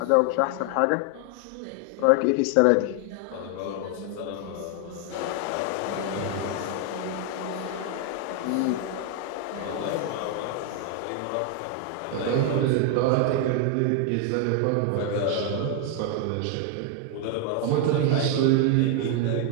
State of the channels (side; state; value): both; different; correlation 0.00